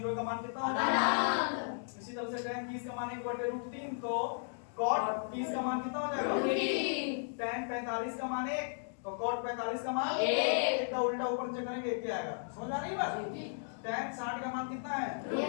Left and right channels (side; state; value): right; silent; digital silence